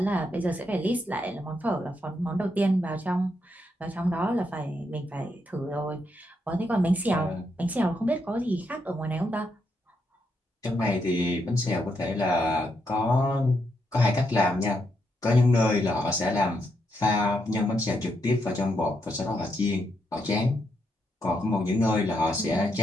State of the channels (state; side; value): normal; both; correlation 0.80